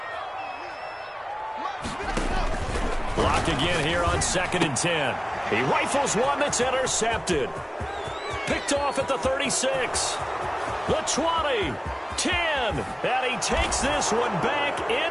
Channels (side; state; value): both; identical; correlation 1.00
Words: Block again here on 2nd and 10. He rifles one that's intercepted. Picked off at the 36. The 20. 10. And he takes this one back